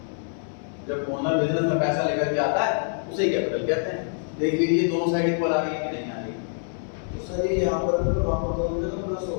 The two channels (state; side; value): silent; right; 61 dB below the other